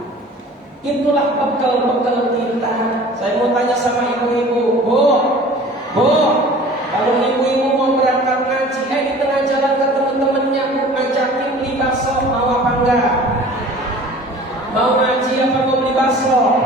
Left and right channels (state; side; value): normal; both; correlation 0.45